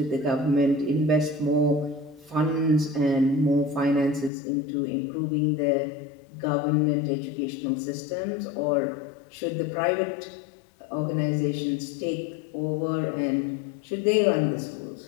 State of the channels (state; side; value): drops out; right; at 4.3 s